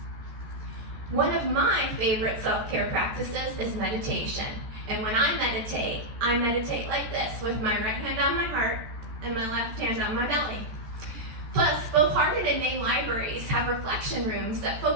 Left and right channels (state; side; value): late; left; 14 ms